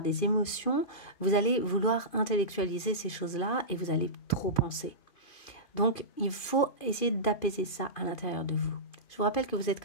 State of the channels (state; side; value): late; right; 2.5 ms